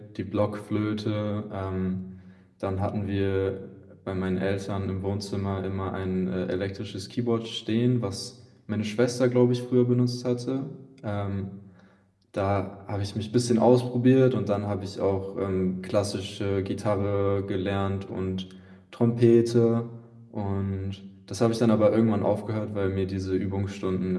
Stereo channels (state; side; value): identical; both; correlation 1.00